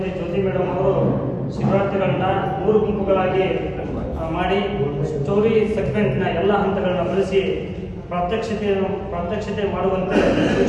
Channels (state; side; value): identical; both; correlation 1.00